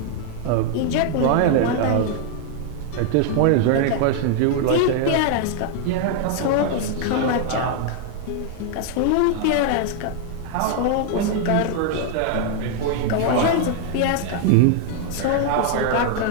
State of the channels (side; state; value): both; different; correlation 0.00